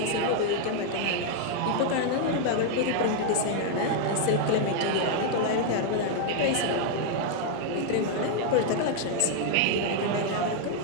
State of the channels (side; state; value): both; different; correlation 0.00